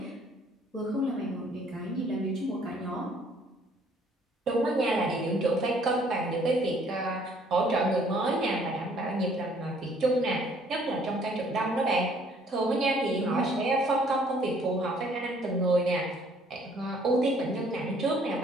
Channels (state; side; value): normal; both; correlation 0.61